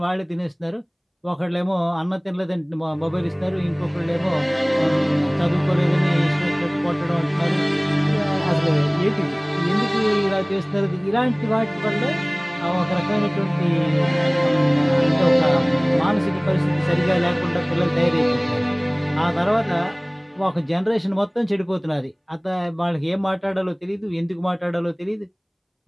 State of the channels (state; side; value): identical; both; correlation 1.00